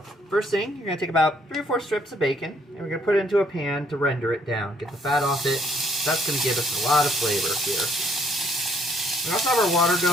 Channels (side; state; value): both; normal; correlation 0.66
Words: first thing, you're going to take about 3 or 4 strips of bacon, and we're going to put it into a pan to render it down. Get the fat off it. That's going to give us a lot of flavor here. We also have our water